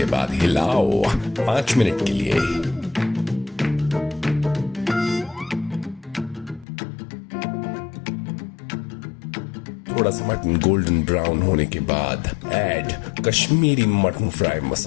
बाद हिलाओ 5 मिनट के लिए। थोड़ा सा मटन गोल्डन ब्राउन होने के बाद ऐड कश्मीरी मटन फ्राई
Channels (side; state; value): right; drops out; at 6.7 s